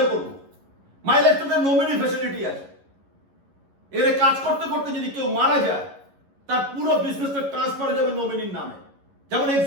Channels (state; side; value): late; left; 11 ms